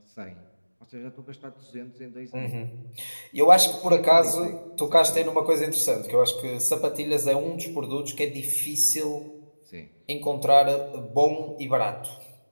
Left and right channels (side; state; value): both; inverted; correlation -1.00